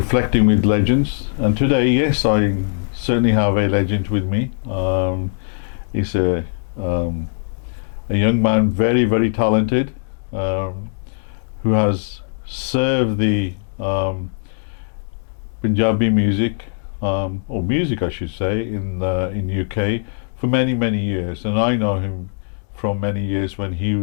with Legends. And today, yes, I certainly have a legend with me. He's a young man, very, very talented, who has served the Punjabi music, or music, I should say, in UK for many, many years. And I know him from many years when he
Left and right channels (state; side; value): silent; right; 65 dB below the other